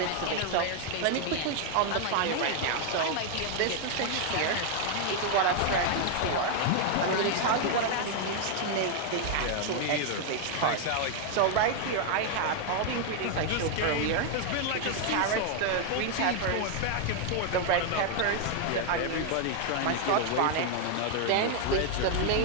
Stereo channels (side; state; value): both; different; correlation 0.00